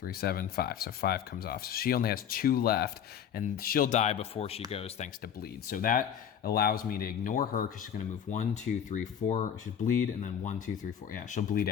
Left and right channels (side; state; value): right; quieter; 8.8 dB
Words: 7, 5. So 5 comes off. So she only has 2 left, and she'll die before she goes thanks to bleed. So that allows me to ignore her because she's going to move 1, 2, 3, 4. She'll bleed, and then 1, 2, 3, 4. Yeah, she'll bleed